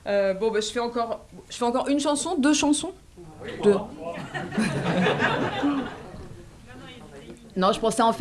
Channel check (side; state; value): both; identical; correlation 1.00